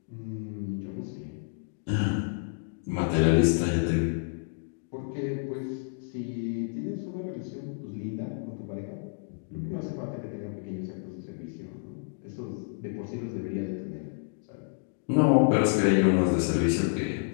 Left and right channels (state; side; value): silent; right; digital silence